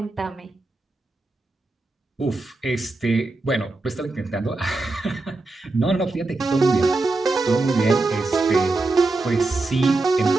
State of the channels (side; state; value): left; quieter; 3.2 dB